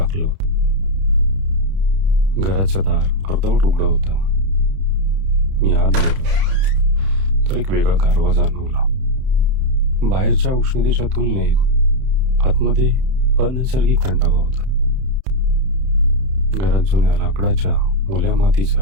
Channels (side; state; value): left; late; 31 ms